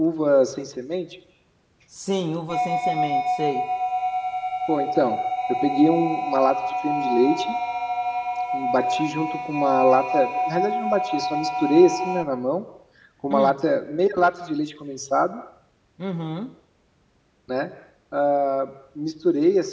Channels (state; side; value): identical; both; correlation 1.00